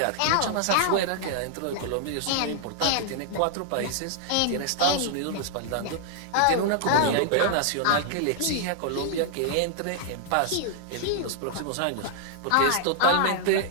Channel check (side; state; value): both; different; correlation -0.01